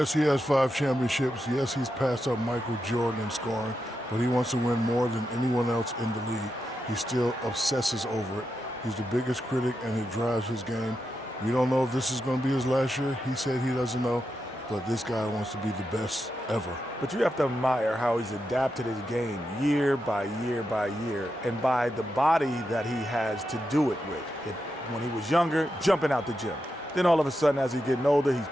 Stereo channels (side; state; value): both; normal; correlation 0.87